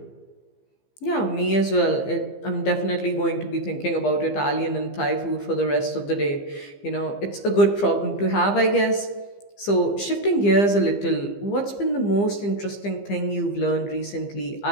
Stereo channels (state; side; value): late; right; 15 ms